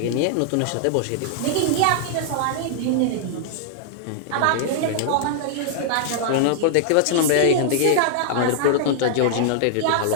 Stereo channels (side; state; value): both; different; correlation -0.01